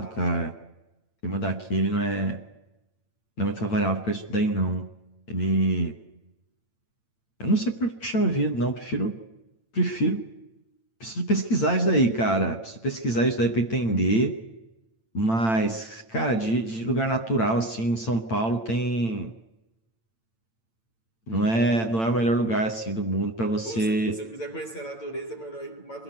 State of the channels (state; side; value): late; right; 8.9 ms